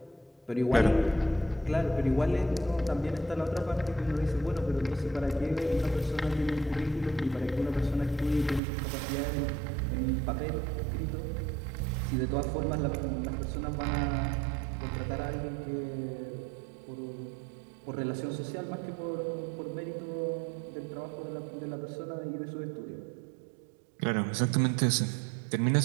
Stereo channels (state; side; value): drops out; left; at 8.6 s